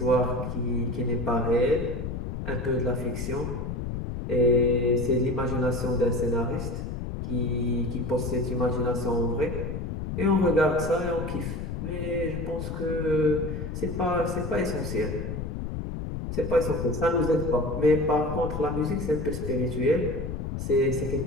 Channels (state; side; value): noise; left; rumble, 5 dB below the sound